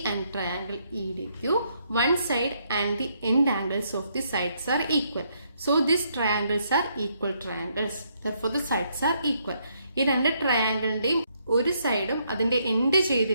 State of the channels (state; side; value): inverted; both; correlation -0.73